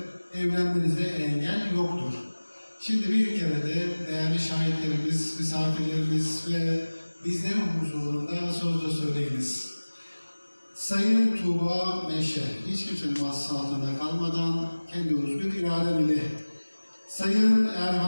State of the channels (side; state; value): both; inverted; correlation -1.00